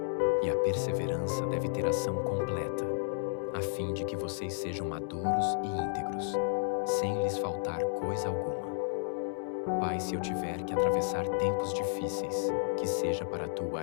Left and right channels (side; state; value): right; silent; 56 dB below the other